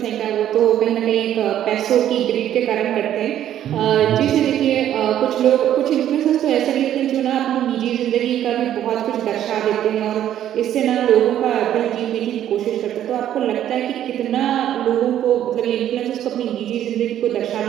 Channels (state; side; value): quieter; left; 11.3 dB